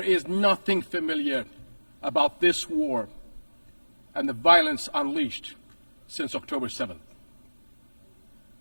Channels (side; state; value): both; inverted; correlation -1.00